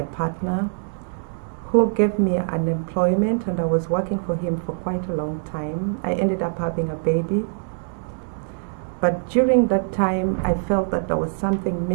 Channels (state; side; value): silent; left; 63 dB below the other